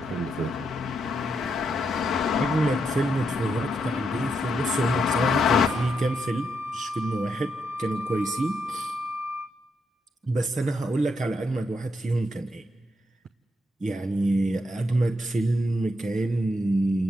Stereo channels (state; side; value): normal; both; correlation 0.81